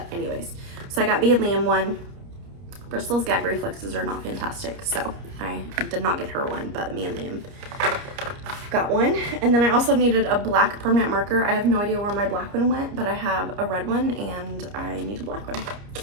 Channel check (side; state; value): left; late; 30 ms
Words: anyways. So I got me and Liam one. Brystal's gag reflexes are not fantastic, so I did not get her one, but me and Liam got one. And then I also needed a black permanent marker. I have no idea where my black one went, but I have a red one and I need a black one.